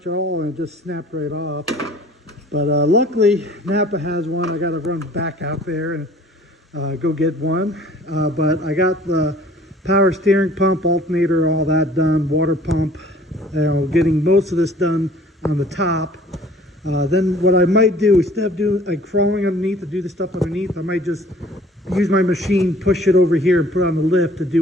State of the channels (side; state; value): both; normal; correlation 0.52